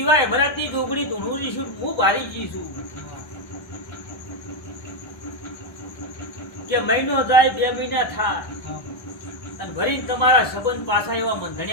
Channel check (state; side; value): late; right; 1.3 ms